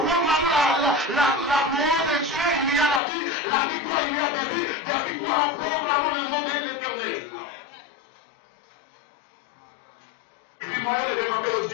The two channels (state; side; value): drops out; right; at 3.0 s